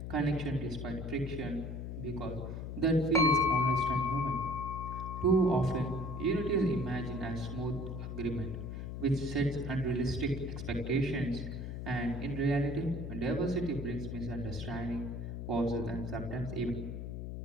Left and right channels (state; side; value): noise; left; hum, 6 dB below the sound